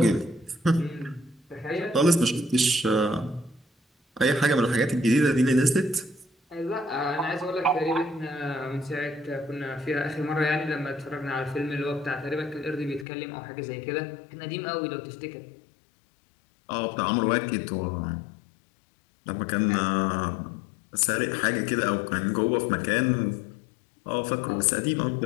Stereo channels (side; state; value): right; drops out; at 13.1 s